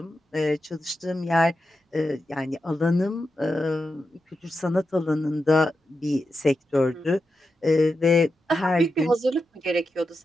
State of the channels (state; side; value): normal; both; correlation 0.88